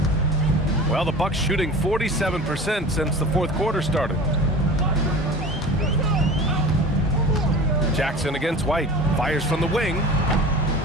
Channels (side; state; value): both; normal; correlation 0.37